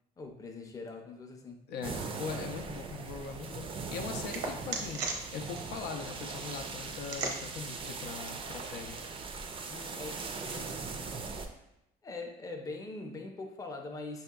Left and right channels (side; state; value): both; normal; correlation 0.29